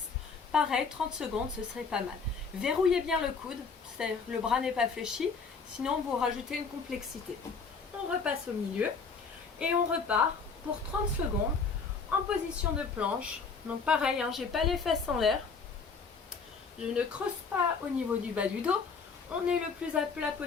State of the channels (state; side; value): quieter; right; 5.0 dB